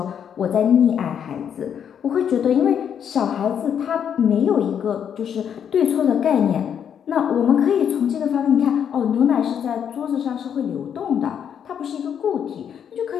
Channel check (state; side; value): quieter; right; 8.4 dB